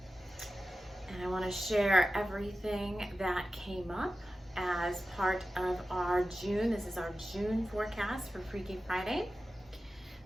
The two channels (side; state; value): both; normal; correlation 0.94